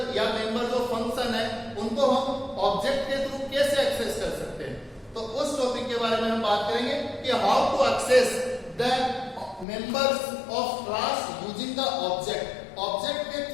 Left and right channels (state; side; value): drops out; right; at 9.7 s